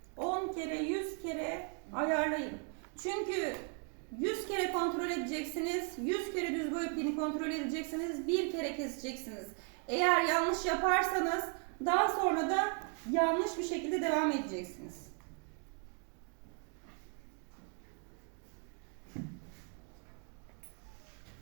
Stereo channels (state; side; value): quieter; left; 39.6 dB